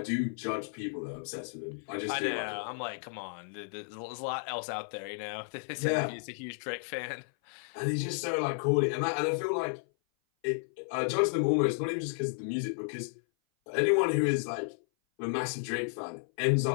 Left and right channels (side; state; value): right; silent; 56 dB below the other